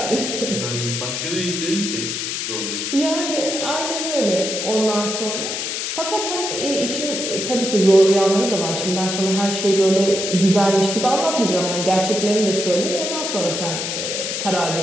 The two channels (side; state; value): left; noise; hiss, 3 dB below the sound